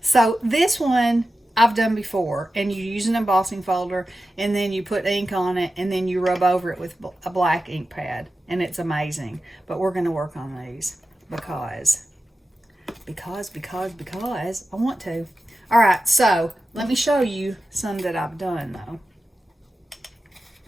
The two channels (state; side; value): normal; both; correlation 0.93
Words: this one I've done before, and you use an embossing folder, and then you put ink on it, and then you rub over it with a black ink pad, and it's amazing. But we're going to work on these because I want to. All right, so let me show you some that I've done though.